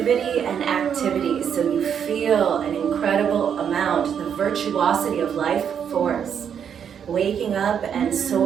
and activity. So you feel an incredible amount, the virtuosity of life force, waking up and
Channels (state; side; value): quieter; left; 8.0 dB